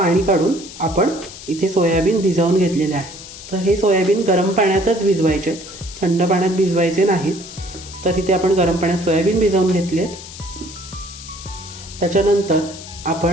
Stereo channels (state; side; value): noise; left; hiss, 14 dB below the sound